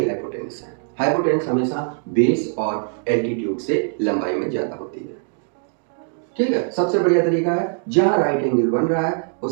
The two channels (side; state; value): left; silent; 56 dB below the other